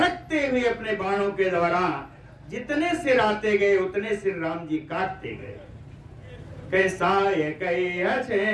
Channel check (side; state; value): both; identical; correlation 1.00